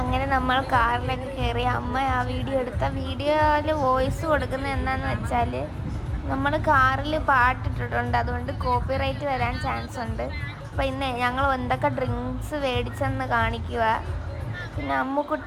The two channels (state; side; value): identical; both; correlation 1.00